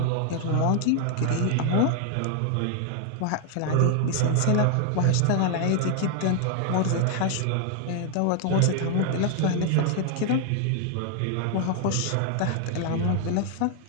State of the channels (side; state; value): both; different; correlation 0.00